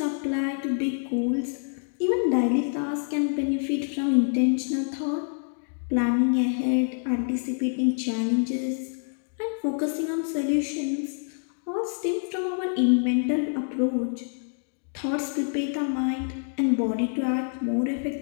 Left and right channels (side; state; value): right; silent; 60 dB below the other